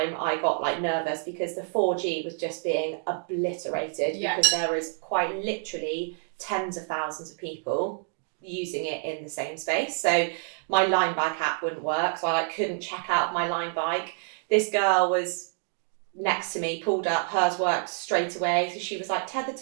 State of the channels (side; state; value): left; silent; 60 dB below the other